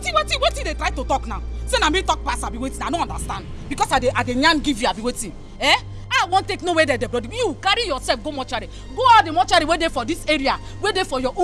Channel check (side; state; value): both; identical; correlation 1.00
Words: they try to talk now? Say na me talk pass, I be waiting. I don't understand. Because I dey yarn give you, I be waiting. Eh? I won't take no way there, brother. You carry yourself, go mortuary. Go out the mortuary where they for this area, where they for your